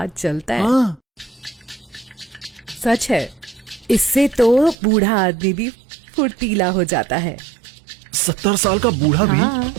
चलता है। सच है, इससे तो बूढ़ा आदमी भी फुर्तीला हो जाता है। 70 साल का बूढ़ा भी? हाँ,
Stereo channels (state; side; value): drops out; left; at 4.8 s